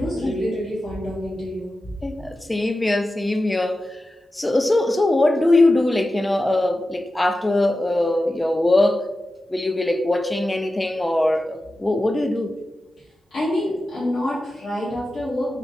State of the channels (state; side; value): normal; both; correlation 0.93